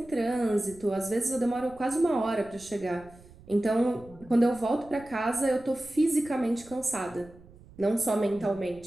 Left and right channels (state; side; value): noise; right; rumble, 22 dB below the sound